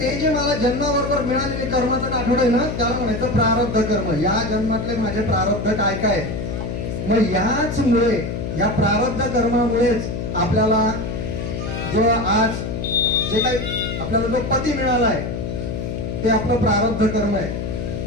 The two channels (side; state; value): left; noise; hum, 4 dB below the sound